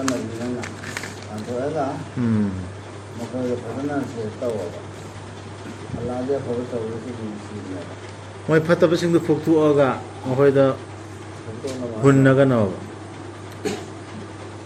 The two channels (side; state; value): both; identical; correlation 1.00